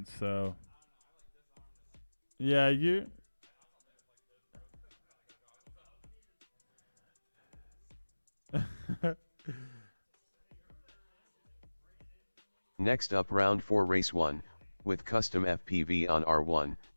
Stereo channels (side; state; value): both; inverted; correlation -1.00